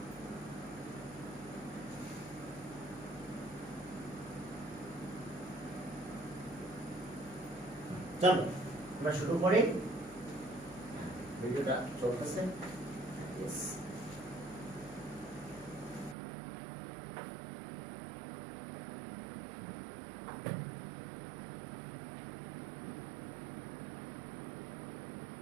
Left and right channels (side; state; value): left; drops out; at 16.2 s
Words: চলো আমরা শুরু করি, ভিডিওটা চলতেছে। Yes.